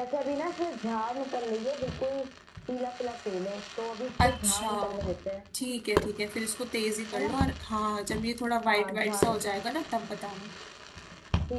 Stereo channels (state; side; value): identical; both; correlation 1.00